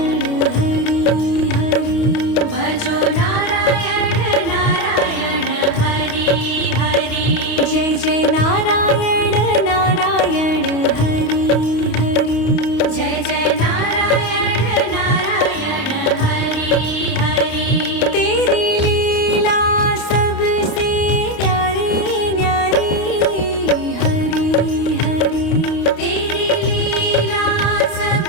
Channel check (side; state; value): right; late; 28 ms